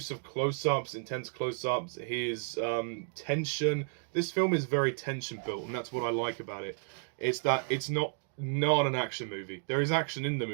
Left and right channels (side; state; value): left; silent; 56 dB below the other